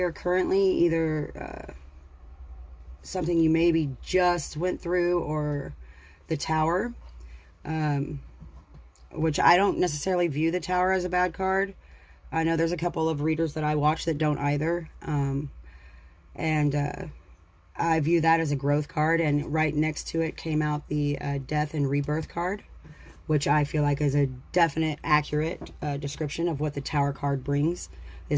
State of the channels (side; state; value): both; identical; correlation 1.00